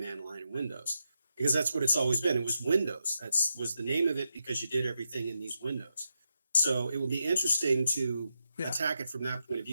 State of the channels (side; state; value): both; inverted; correlation -0.85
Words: line in Windows. Because that's what it's always been. It was Windows. That was the name of it because you did everything in these windows. So it will be interesting to attack it from that point of